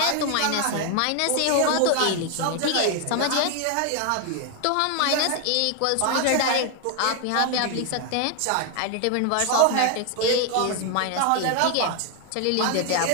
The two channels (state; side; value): different; both; correlation 0.00